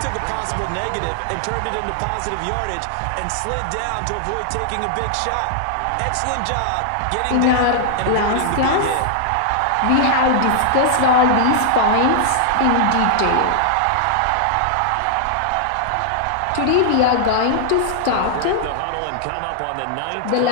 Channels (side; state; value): both; different; correlation -0.01